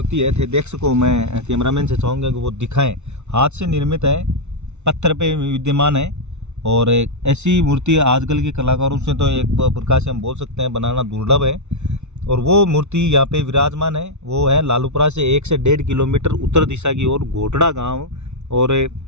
है। थे देख सको, मैं कैमरामैन से चाहूँगा कि वो दिखाएं, हाथ से निर्मित है, पत्थर पे विद्यमान है और ऐसी मूर्ति आजकल के कलाकारों से तो एक प्रकार से हम बोल सकते हैं बनाना दुर्लभ है। और वो मूर्ति यहाँ पे विराजमान है, वो है लालूपुरा से 1 से 1.5 किलोमीटर उत्तर दिशा की ओर घोटड़ा गांव और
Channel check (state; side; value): late; left; 0.82 ms